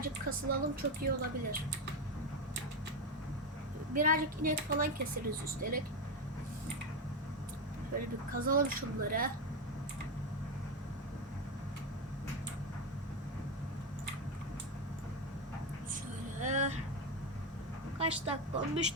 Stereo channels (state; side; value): normal; both; correlation 0.11